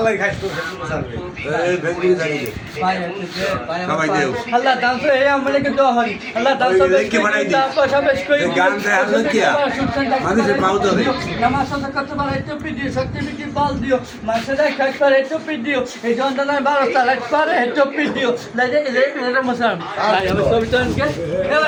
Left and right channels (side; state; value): both; identical; correlation 1.00